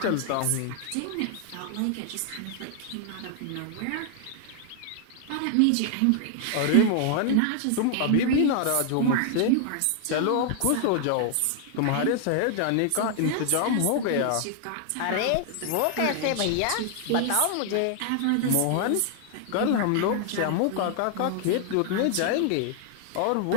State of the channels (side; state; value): both; different; correlation 0.00